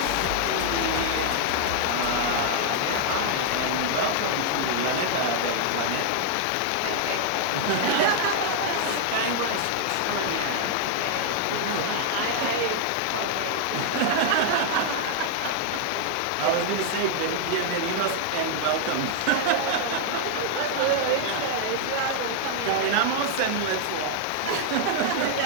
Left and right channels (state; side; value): different; both; correlation 0.00